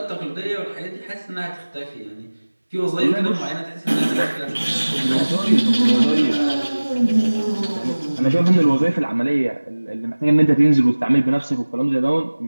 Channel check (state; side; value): inverted; both; correlation -1.00